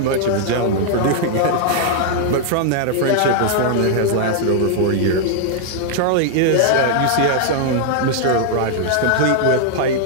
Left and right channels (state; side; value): different; both; correlation -0.01